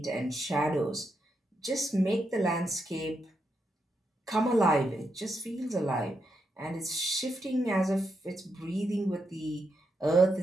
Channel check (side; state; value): both; normal; correlation 0.82